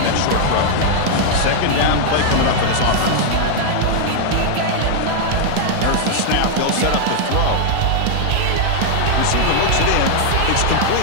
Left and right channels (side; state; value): both; different; correlation 0.00